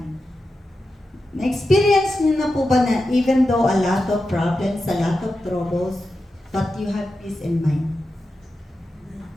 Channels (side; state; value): both; normal; correlation 0.90